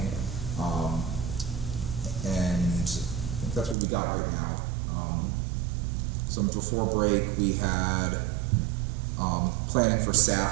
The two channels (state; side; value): drops out; left; at 3.8 s